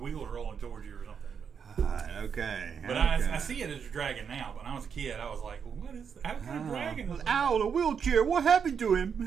rolling towards you or something. Okay. But I see it as a dragon now. But when I was a kid, I was like, well, "What is? How kind of dragon is that?" Owl in a wheelchair. What happened to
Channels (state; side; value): quieter; left; 6.9 dB